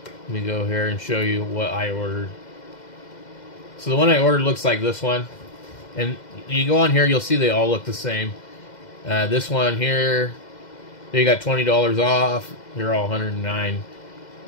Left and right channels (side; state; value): right; late; 2.1 ms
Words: let me go here and show you what I ordered. So the one I ordered looks like this one. And you go on here, you'll see they all look the same. This one here, they got $20 off. They're all $109.